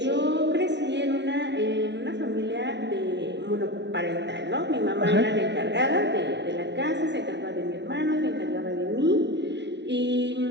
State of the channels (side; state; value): left; late; 0.51 ms